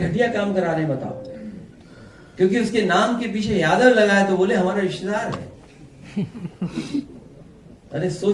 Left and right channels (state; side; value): identical; both; correlation 1.00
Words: काम करा रहे हैं बताओ। क्योंकि उसके नाम के पीछे यादव लगा है तो बोले हमारा रिश्तेदार है। अरे